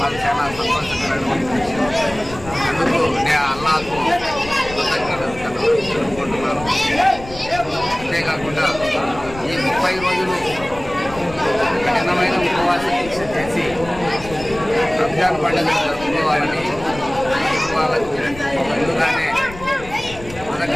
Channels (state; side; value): noise; left; rumble, 15 dB below the sound